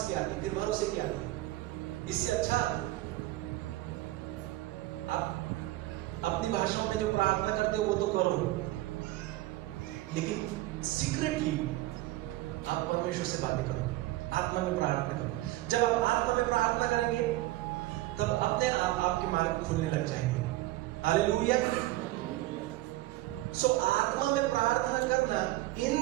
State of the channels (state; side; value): quieter; left; 17.4 dB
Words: की आती, फिर भरोसे की आती। इससे अच्छा आप अपनी भाषाओं में जो प्रार्थना करते हो वो तो करो, लेकिन सीक्रेटली आप परमेश्वर से बातें करो, आत्मा में प्रार्थना करो। जब आप आत्मा में प्रार्थना करेंगे तब अपने आप आपके मार्ग खुलने लग जाएंगे। हालेलुया। सो आत्मा में प्रार्थना करना